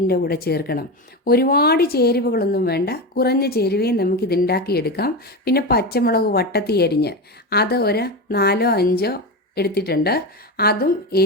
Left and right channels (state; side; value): normal; both; correlation 0.19